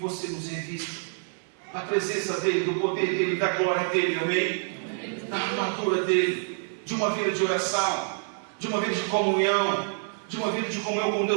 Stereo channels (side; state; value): left; silent; digital silence